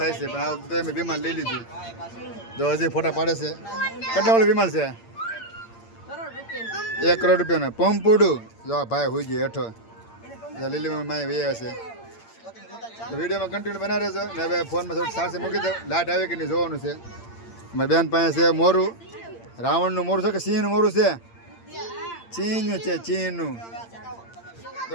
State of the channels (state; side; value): late; right; 8.7 ms